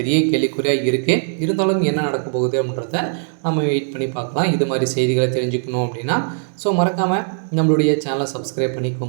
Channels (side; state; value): left; silent; digital silence